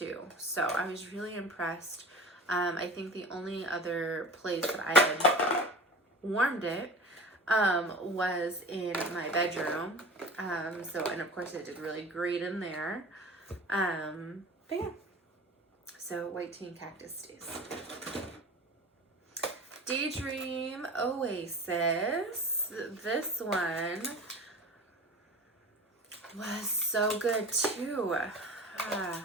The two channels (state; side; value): normal; both; correlation 0.36